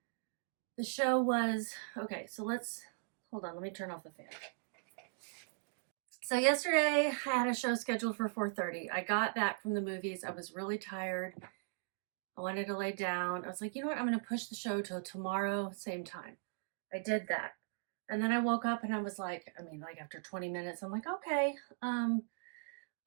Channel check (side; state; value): left; silent; digital silence